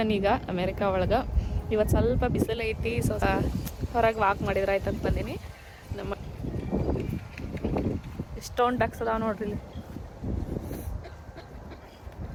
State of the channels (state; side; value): identical; both; correlation 1.00